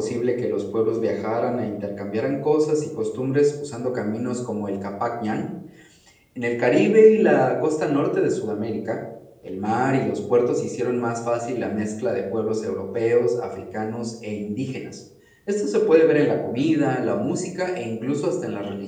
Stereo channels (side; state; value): both; identical; correlation 1.00